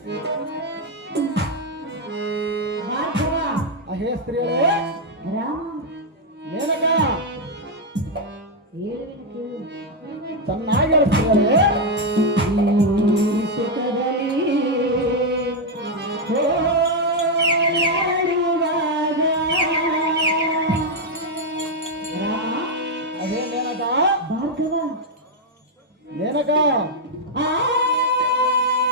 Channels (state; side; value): normal; both; correlation 0.00